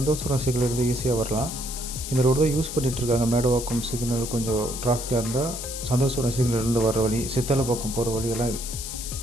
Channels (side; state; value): left; noise; hiss, 7 dB below the sound